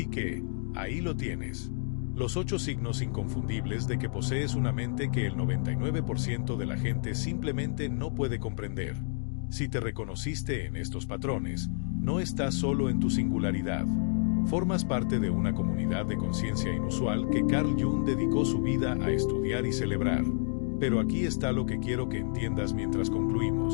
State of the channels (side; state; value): right; silent; digital silence